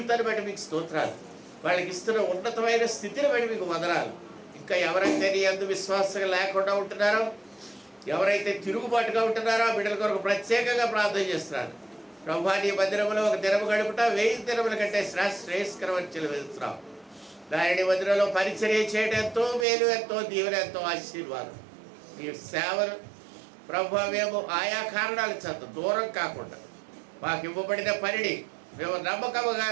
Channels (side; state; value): left; drops out; at 19.7 s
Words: బట్టి మీకు స్తోత్రాలు. వాళ్ళకి ఇస్తున్న ఉన్నతమైన స్థితిని బట్టి మీకు వందనాలు. ఇంకా ఎవరైతే నీ అందు విశ్వాసంగా లేకుండా ఉంటున్నారో, ఎవరైతే తిరుగుబాటుగా ఉంటున్నారో ఆ బిడ్డల కొరకు ప్రత్యేకంగా ప్రార్థన చేస్తున్నారు. ప్రభా, నీ మందిరంలో ఒక దినము గడుపుట 1000 దినముల కంటే శ్రేయస్కరమని చెల్లిస్తున్నావు. దాని మందిరంలో పరిచర్య చేయడం ఎంతో మేలు, ఎంతో దీవెన, ఎంతో ఆశీర్వాదం. మీ సేవలు ప్రభా మేము ఆయా కారణాల చేత దూరం కాకుండా మాకు ఇవ్వబడిన పనిని మేము